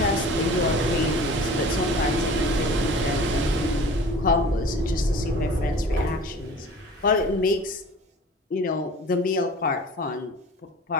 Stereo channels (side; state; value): both; normal; correlation 0.43